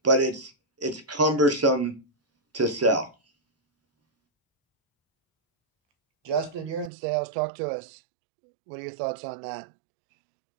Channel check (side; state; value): left; drops out; at 6.9 s